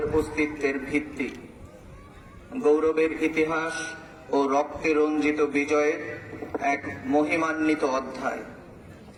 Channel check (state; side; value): identical; both; correlation 1.00